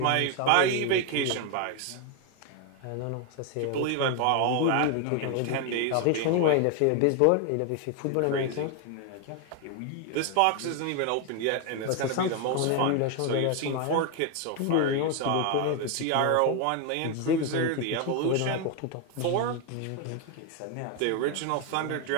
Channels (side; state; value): both; different; correlation 0.01